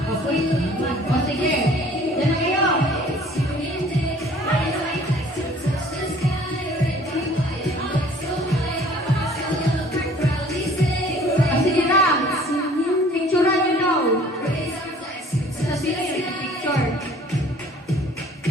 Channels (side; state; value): both; normal; correlation 0.53